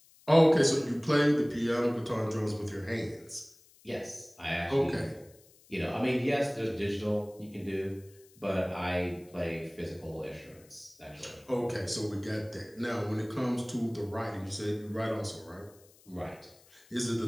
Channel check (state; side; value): noise; left; hiss, 27 dB below the sound